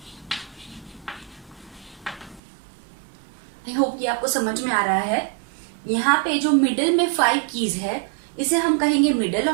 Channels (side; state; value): left; drops out; at 2.4 s